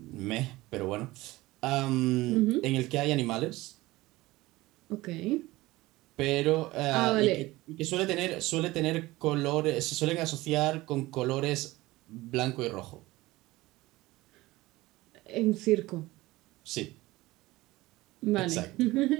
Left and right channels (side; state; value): left; quieter; 19.2 dB